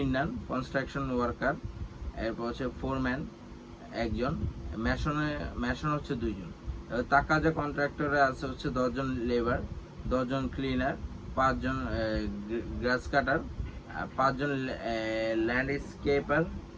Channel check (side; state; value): both; identical; correlation 1.00